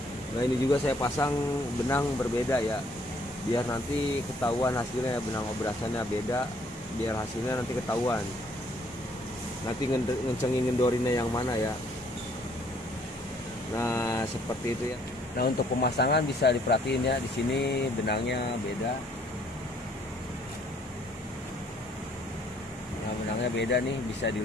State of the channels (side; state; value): both; normal; correlation 0.64